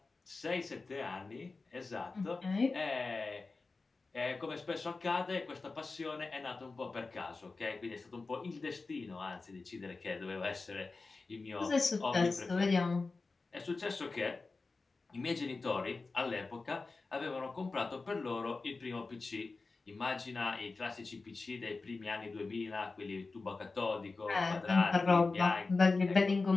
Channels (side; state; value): right; quieter; 3.9 dB